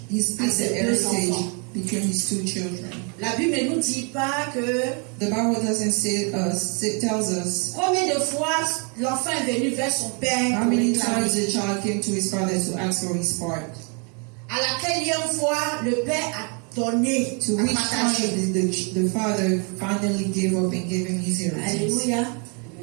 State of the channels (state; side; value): quieter; left; 36.3 dB